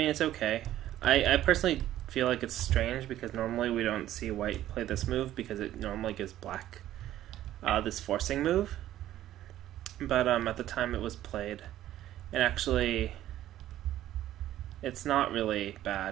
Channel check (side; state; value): left; quieter; 13.1 dB